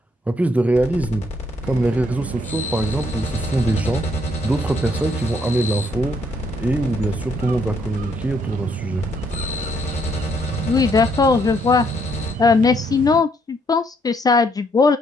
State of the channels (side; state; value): both; normal; correlation 0.71